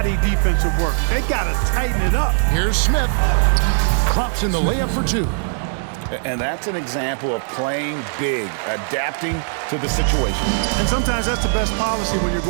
defensive work. They got to tighten it up. Here's Smith. Drops in the layup for 2. And that's an example of playing big, adapting to the situation. And sometimes that's the best policy when you're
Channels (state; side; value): silent; left; 66 dB below the other